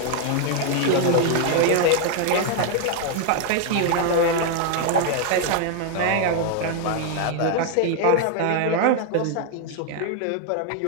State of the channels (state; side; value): different; both; correlation 0.00